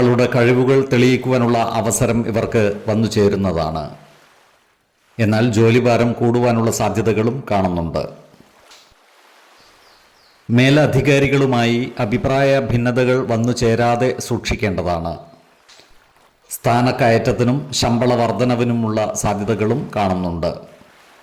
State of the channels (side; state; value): both; identical; correlation 1.00